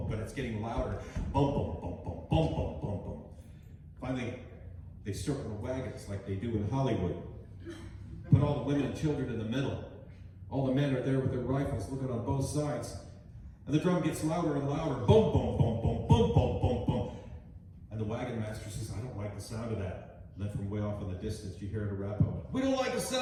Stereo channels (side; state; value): both; identical; correlation 1.00